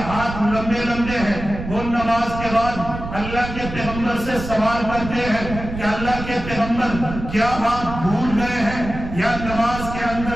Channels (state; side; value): noise; right; rumble, 9 dB below the sound